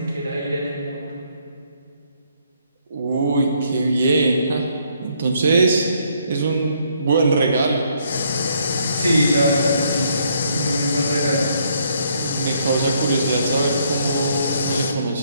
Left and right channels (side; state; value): both; inverted; correlation -0.70